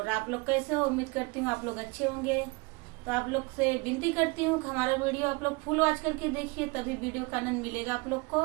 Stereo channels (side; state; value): left; quieter; 27.2 dB